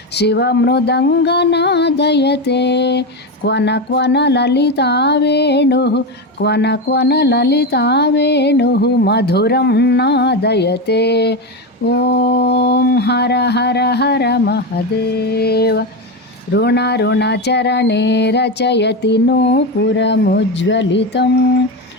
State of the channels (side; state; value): both; normal; correlation 0.15